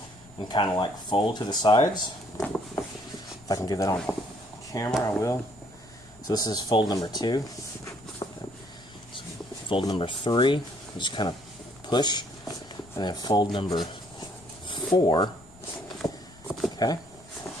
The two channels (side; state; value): left; noise; rumble, 24 dB below the sound